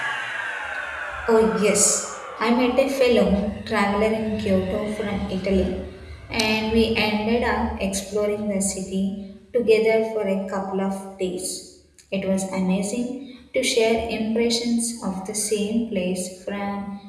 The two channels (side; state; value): both; identical; correlation 1.00